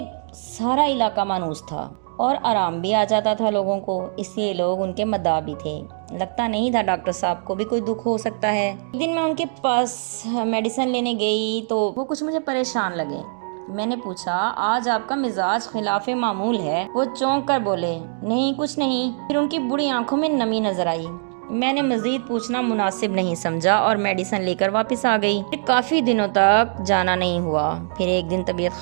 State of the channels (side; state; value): left; silent; digital silence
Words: سارا علاقہ مانوس تھا اور آرام بھی آ جاتا تھا لوگوں کو، اس لیے لوگ ان کے مداح بھی تھے۔ لگتا نہیں تھا ڈاکٹر صاحب کو بھی کوئی دکھ ہو سکتا ہے۔ ایک دن میں ان کے پاس میڈیسن لینے گئی تو وہ کچھ مجھے پریشان لگے۔ میں نے پوچھا، آج آپ کا مزاج خلاف معمول ہے؟ وہ چونک کر بولے، نہیں کچھ نہیں۔ پھر ان کی بڑی آنکھوں میں نمی نظر آئی۔ میں نے مزید پوچھنا مناسب نہیں سمجھا اور میڈیسن لے کر واپس آ گئی۔ پھر کافی دنوں تک جانا نہیں ہوا۔ پھر ایک دن طبیعت